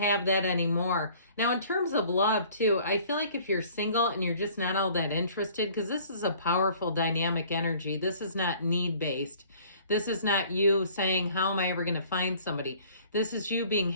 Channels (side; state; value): both; inverted; correlation -0.53